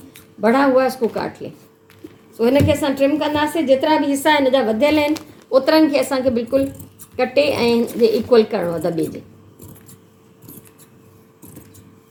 बड़ा हुआ इसको काट लें। सो हिन खे असां ट्रिम कंदासीं। जेतिरा भी हिस्सा हिन जा वधियल आहिनि ओतिरनि खे असांखे बिल्कुलु कटे ऐं जे इक्वल करणो आहे दॿे जे।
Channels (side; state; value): both; identical; correlation 1.00